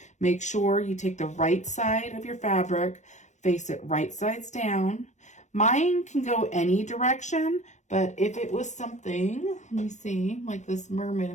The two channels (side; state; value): right; late; 0.34 ms